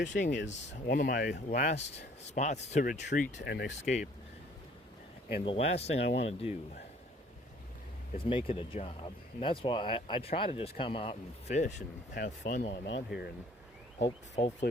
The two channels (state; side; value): normal; both; correlation 0.57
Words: is one of my last spots to retreat and escape. And the last thing I want to do is make it a job. And that's why I try to just come out and fish and have fun while I'm out here. And hopefully